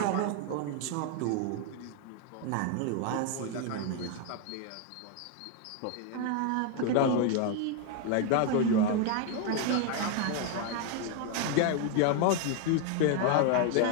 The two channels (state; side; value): different; both; correlation 0.00